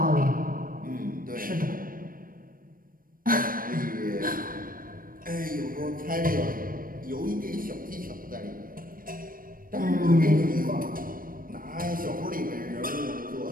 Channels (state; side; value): late; left; 0.41 ms